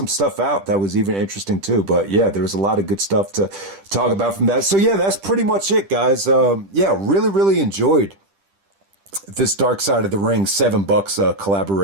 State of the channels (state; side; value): late; left; 10 ms